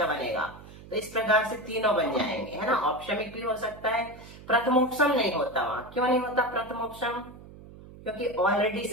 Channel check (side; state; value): right; noise; hum, 18 dB below the sound